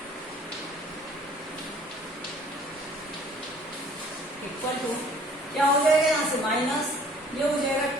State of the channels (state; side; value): normal; both; correlation 0.55